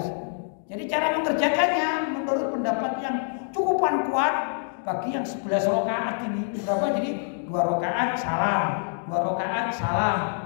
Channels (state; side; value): silent; right; digital silence